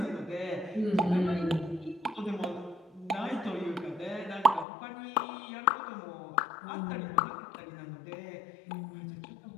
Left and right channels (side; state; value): right; drops out; at 4.7 s